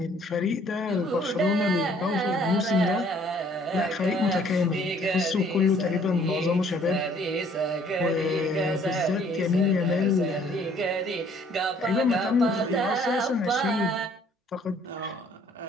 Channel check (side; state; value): both; normal; correlation 0.60